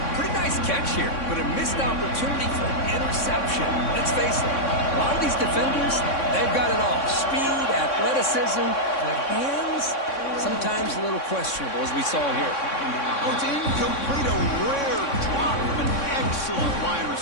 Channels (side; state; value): right; late; 3.6 ms